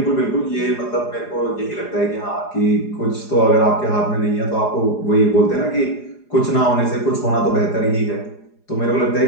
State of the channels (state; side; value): late; right; 4.9 ms